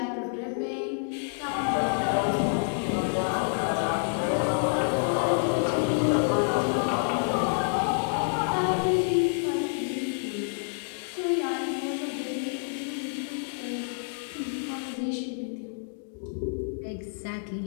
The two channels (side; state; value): right; silent; digital silence